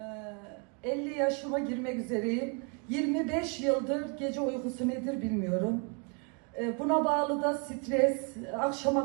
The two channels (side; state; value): left; quieter; 36.0 dB